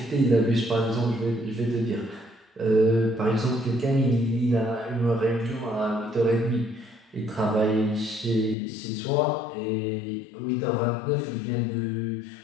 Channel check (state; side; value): drops out; right; at 8.6 s